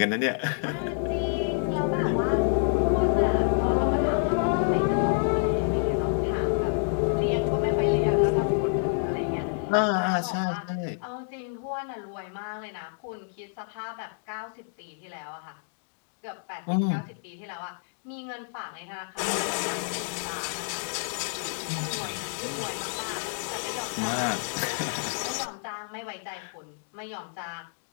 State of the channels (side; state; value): right; silent; digital silence